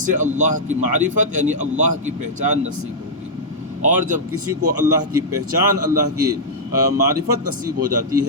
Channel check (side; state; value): both; normal; correlation -0.08